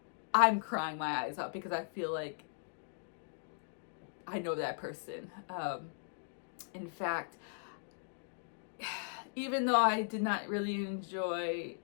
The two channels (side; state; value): right; silent; digital silence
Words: I'm crying my eyes out because I feel like I know that person. In fact, even though I did not really enjoy